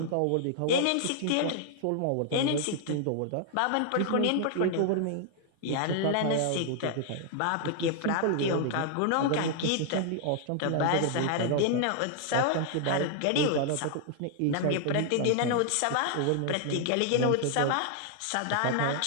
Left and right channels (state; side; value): different; both; correlation 0.00